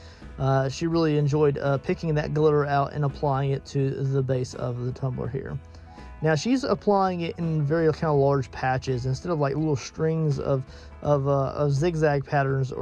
She really enjoyed picking that glitter out and applying it to the base of the tumbler here. Now she's applying it in very kind of large patches instead of like little strings of zigzag patterns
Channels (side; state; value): both; identical; correlation 1.00